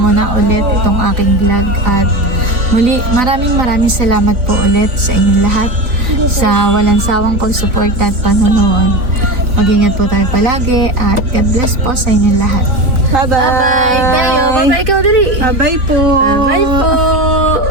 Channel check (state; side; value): late; left; 4.0 ms